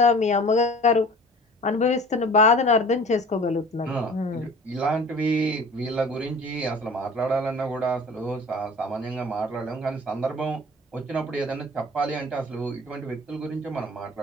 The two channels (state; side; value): normal; both; correlation 0.44